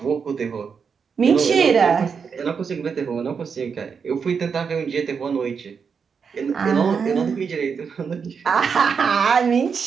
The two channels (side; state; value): left; quieter; 6.1 dB